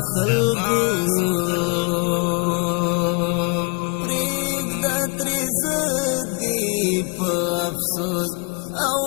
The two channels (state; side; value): quieter; right; 33.5 dB